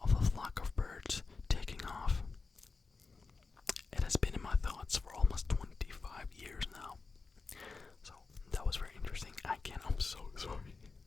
of a flock of birds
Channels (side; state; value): right; quieter; 4.3 dB